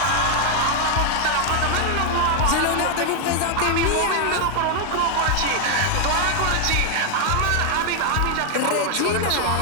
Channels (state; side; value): different; both; correlation 0.00